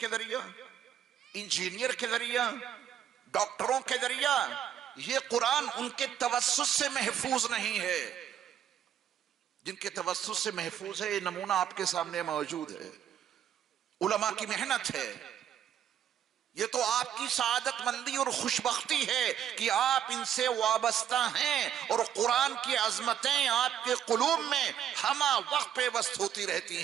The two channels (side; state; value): left; quieter; 9.7 dB